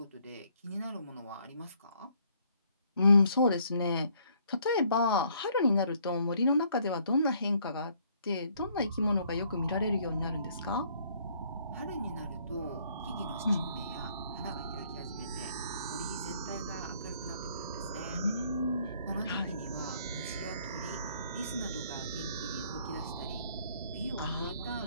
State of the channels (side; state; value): both; inverted; correlation -0.65